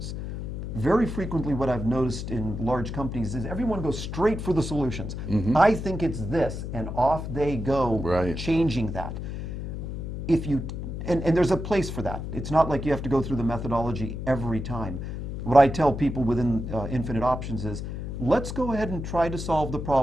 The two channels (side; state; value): left; noise; hum, 6 dB below the sound